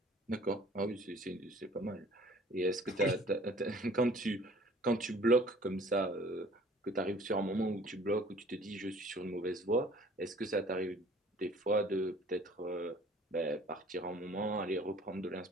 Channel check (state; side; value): normal; both; correlation 0.52